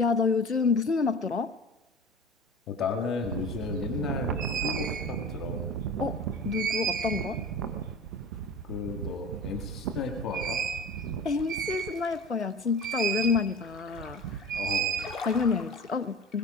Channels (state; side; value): normal; both; correlation 0.36